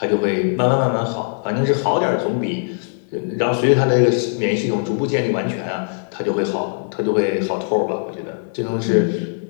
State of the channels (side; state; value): right; silent; 57 dB below the other